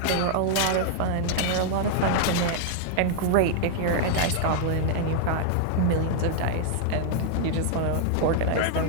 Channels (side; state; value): both; different; correlation 0.00